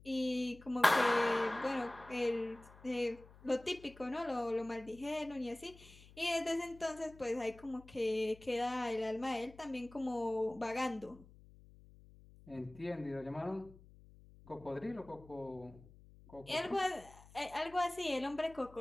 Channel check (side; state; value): left; noise; hum, 22 dB below the sound